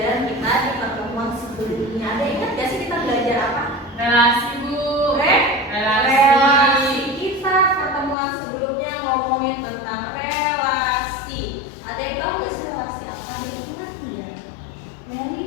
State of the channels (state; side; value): drops out; right; at 8.2 s